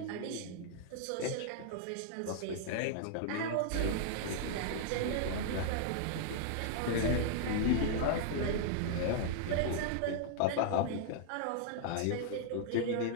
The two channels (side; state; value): both; different; correlation -0.01